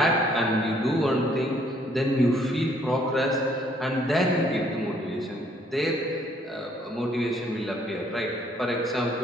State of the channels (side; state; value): both; normal; correlation 0.65